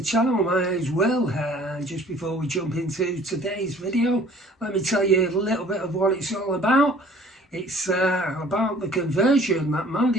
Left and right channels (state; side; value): normal; both; correlation 0.52